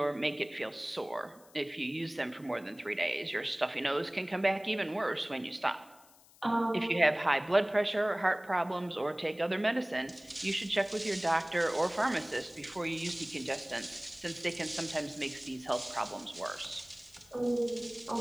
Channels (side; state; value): left; noise; hiss, 26 dB below the sound